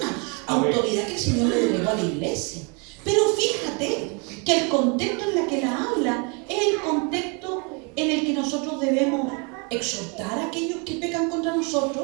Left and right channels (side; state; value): left; quieter; 33.6 dB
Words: autoridad que el Señor le delegó a la iglesia. Pero fíjate que el contexto en el que la habla es el contexto en el que nosotros debemos exhortar a aquellos que pecan contra